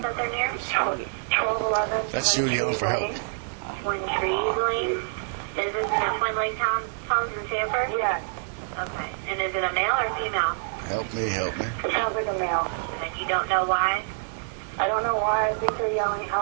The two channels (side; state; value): left; silent; digital silence